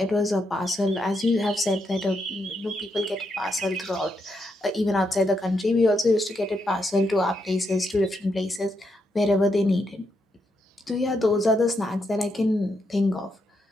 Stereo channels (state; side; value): normal; both; correlation 0.80